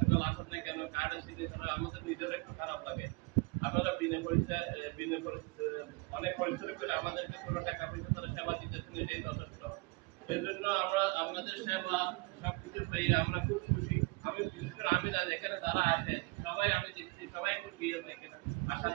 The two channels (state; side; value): quieter; left; 27.0 dB